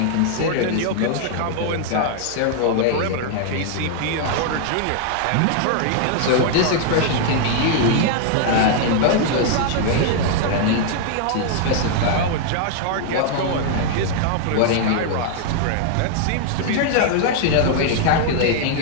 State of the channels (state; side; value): different; both; correlation 0.00